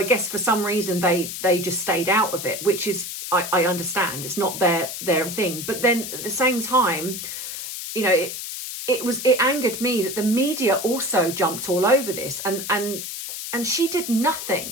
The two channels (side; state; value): left; noise; hiss, 7 dB below the sound